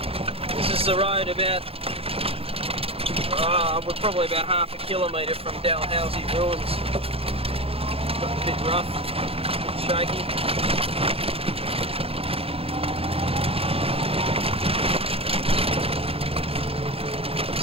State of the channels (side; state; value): left; late; 0.28 ms